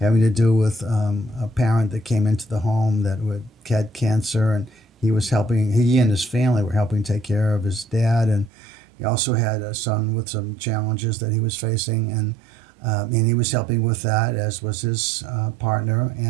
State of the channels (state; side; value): drops out; left; at 8.5 s